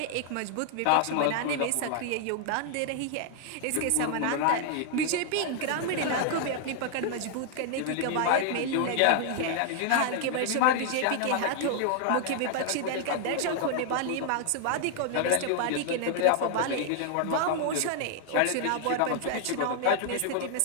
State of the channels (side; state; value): both; different; correlation 0.00